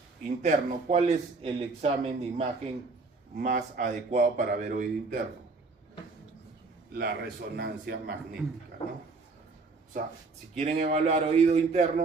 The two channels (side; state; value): left; quieter; 3.9 dB